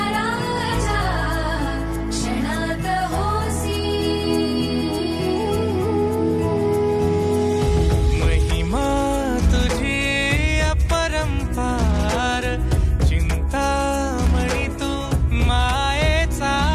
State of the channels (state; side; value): identical; both; correlation 1.00